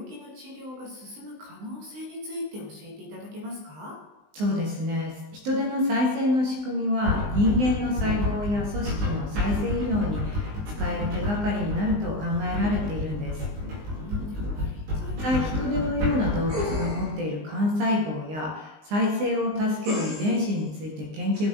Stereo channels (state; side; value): late; left; 19 ms